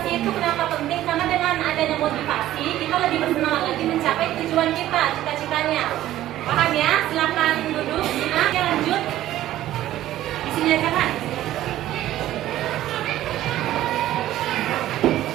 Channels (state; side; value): quieter; left; 13.8 dB